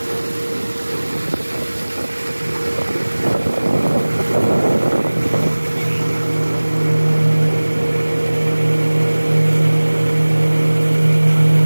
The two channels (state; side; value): inverted; both; correlation -1.00